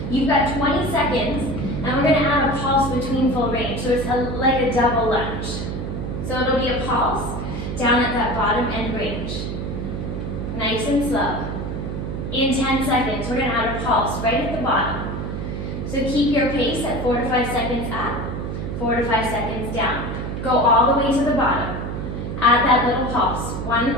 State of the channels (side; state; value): right; noise; hum, 5 dB below the sound